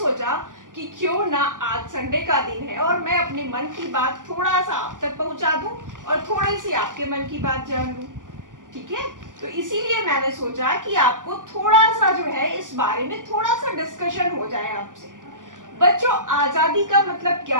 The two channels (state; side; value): late; left; 0.88 ms